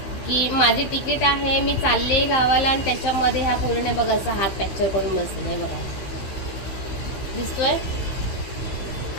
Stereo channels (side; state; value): right; late; 15 ms